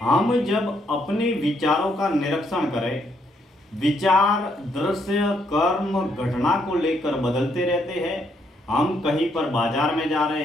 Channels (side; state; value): both; normal; correlation 0.73